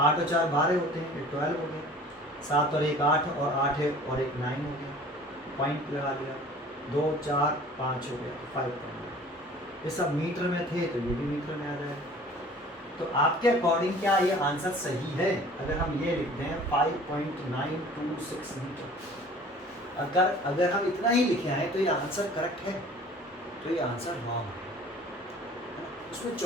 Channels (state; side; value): normal; both; correlation 0.47